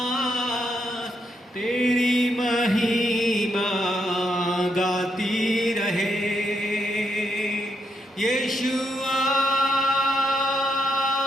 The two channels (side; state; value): both; normal; correlation 0.79